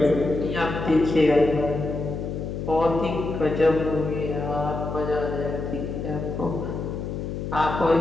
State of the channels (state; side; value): noise; left; hum, 5 dB below the sound